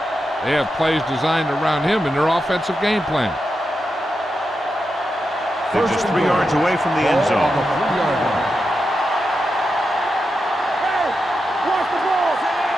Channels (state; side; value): normal; both; correlation 0.88